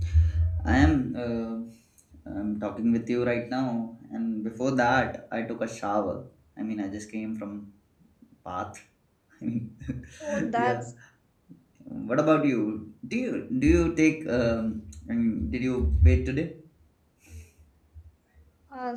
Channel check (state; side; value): identical; both; correlation 1.00